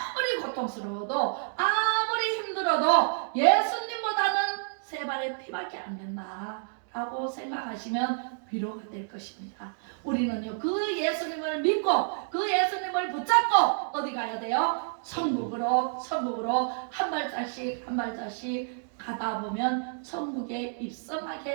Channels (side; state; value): left; silent; digital silence